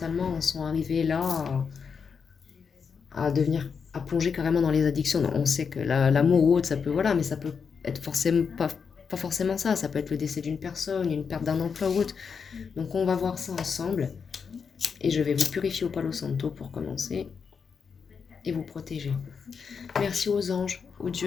en sont arrivées là à devenir, à plonger carrément dans les addictions. Non, on sait que l'amour ou autre, ça peut, voilà, mais ça peut être forcément pas forcément ça. Ça peut être le décès d'une personne, une perte d'un emploi ou autre. Donc on va voir ça ensemble. Et je vais vous purifier au Palo Santo pour commencer et vous protéger. Merci aux anges, aux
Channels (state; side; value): quieter; right; 6.0 dB